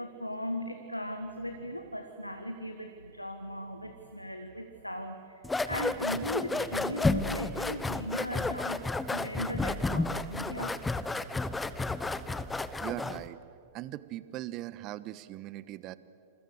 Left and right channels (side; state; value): both; normal; correlation 0.42